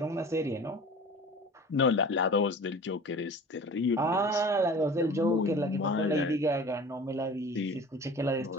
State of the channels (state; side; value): normal; both; correlation 0.40